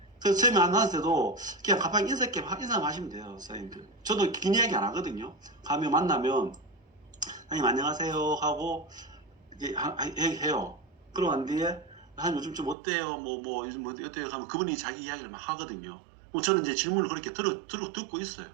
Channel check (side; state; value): left; drops out; at 12.8 s